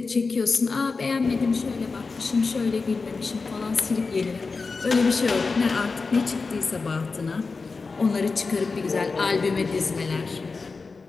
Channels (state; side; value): quieter; right; 4.3 dB